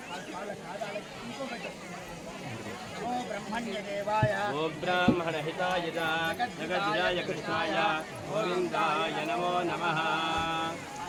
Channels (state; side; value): identical; both; correlation 1.00